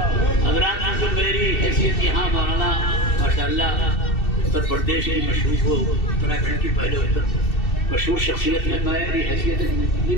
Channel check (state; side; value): late; right; 2.7 ms